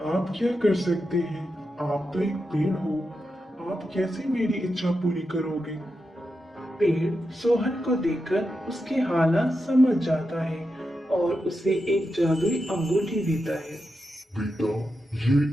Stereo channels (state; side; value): normal; both; correlation 0.88